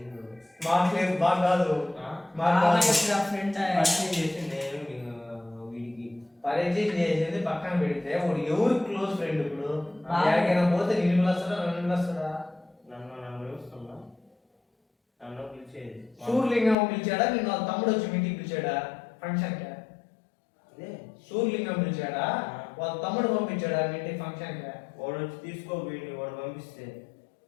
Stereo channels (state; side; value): drops out; right; at 16.8 s